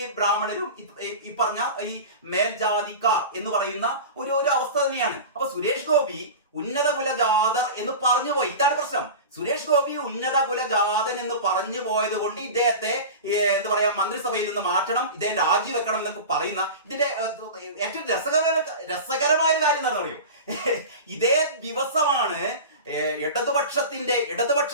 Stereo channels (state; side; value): inverted; both; correlation -0.30